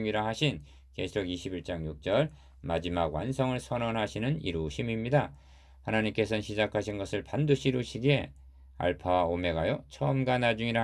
하신 계시록 21장 6절 마지막 완성을 선언하시는 이루심입니다. 하나님께서는 시작하신 것을 반드시 이루시기에 알파와 오메가요 처음과 나중이라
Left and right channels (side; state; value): both; identical; correlation 1.00